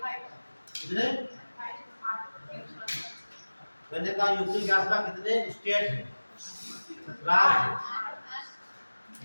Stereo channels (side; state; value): both; inverted; correlation -1.00